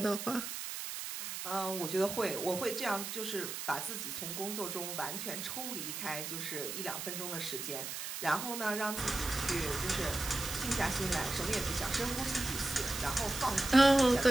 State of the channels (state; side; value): noise; right; hiss, 6 dB below the sound